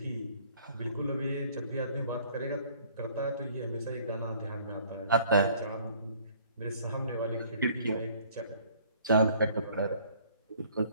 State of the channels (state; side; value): inverted; both; correlation -0.56